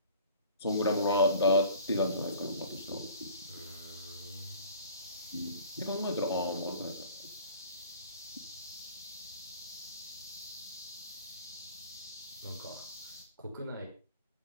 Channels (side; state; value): both; inverted; correlation -0.47